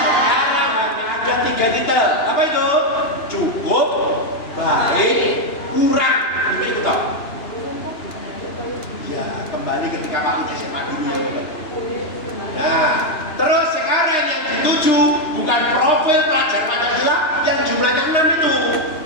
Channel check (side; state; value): right; late; 2.9 ms